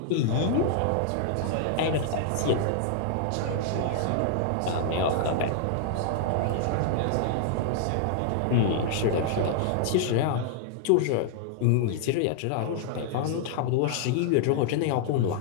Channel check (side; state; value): both; different; correlation -0.01